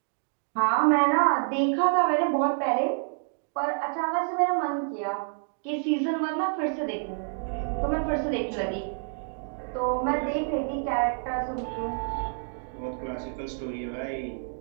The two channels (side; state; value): left; silent; digital silence